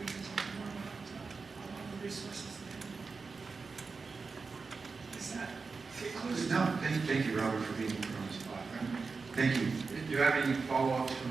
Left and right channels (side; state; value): left; quieter; 4.5 dB